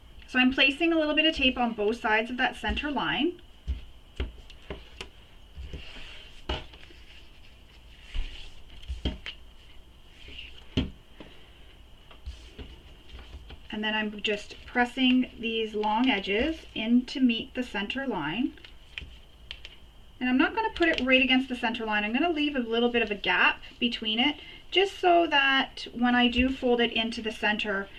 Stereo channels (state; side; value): identical; both; correlation 1.00